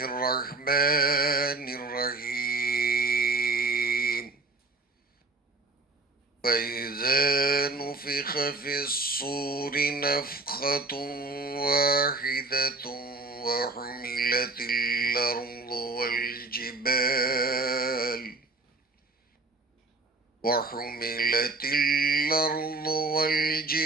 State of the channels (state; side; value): quieter; left; 3.4 dB